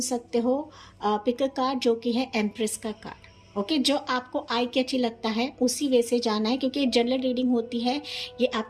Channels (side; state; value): both; identical; correlation 1.00